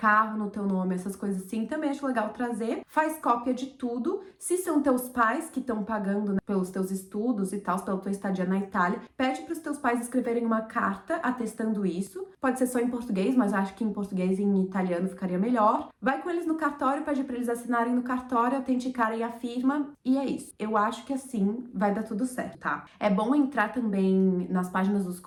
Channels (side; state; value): both; identical; correlation 1.00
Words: no teu nome, essas coisas assim, também acho legal trazer. Faz cópia de tudo. Se são teus pais que estão pagando, né, pelos teus estudos e tal, pela tua estadia na Itália, pede pros teus pais escreverem uma carta atestando isso. Pode ser só em português, mas acho que em português e em italiano ficaria melhor. Vai com eles no cartório, pede pra eles assinarem no cartório, autenticarem a firma, e é isso. Eu acho que assim vai dar tudo certo, tá? É bom entrar também nas páginas dos